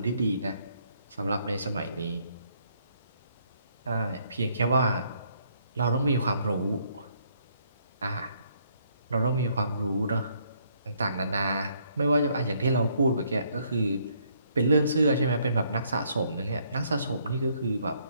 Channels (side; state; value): both; inverted; correlation -0.69